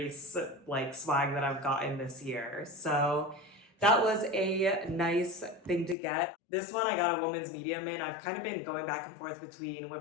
swag that I've gotten this year. So that was a nice thing to get. This one I got a women's medium in. I've kind of been going back and forth between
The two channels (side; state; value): right; drops out; at 6.0 s